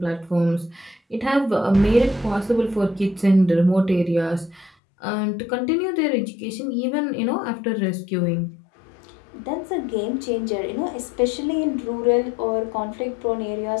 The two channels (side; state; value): right; drops out; at 4.7 s